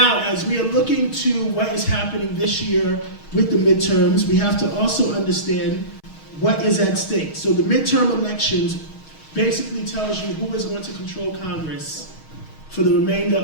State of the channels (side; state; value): right; late; 6.3 ms